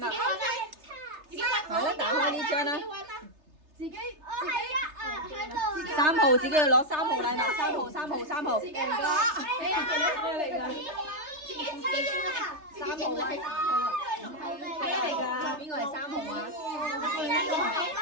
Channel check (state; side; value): late; left; 3.3 ms